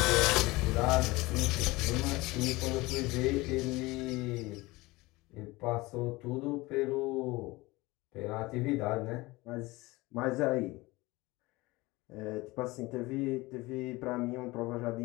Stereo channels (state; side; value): quieter; right; 21.5 dB